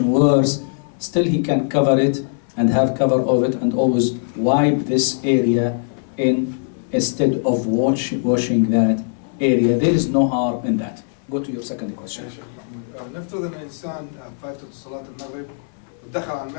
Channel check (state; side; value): silent; right; 57 dB below the other